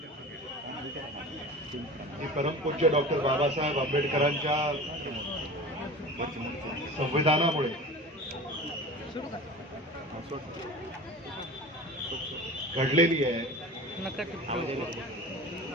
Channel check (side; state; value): both; normal; correlation 0.35